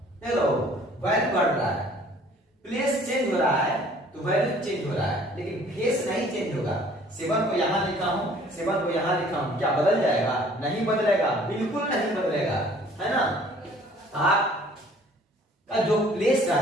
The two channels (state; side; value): normal; both; correlation 0.55